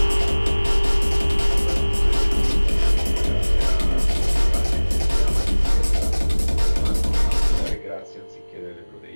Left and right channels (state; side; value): inverted; both; correlation -1.00